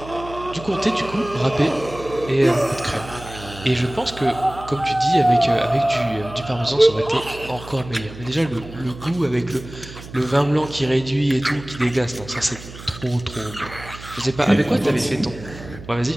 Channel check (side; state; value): right; noise; hum, 15 dB below the sound